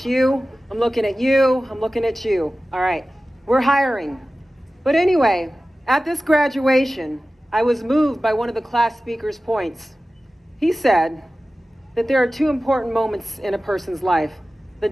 you, I'm looking at you, I'm looking at you. All right, we're hiring. But anyway, at this graduation, I was moved by one of the class speaker's points. He said that there are 2 important moments in a person's life: the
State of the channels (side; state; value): both; normal; correlation 0.96